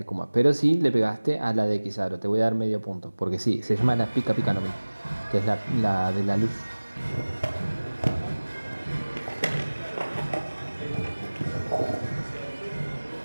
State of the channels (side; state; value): both; inverted; correlation -1.00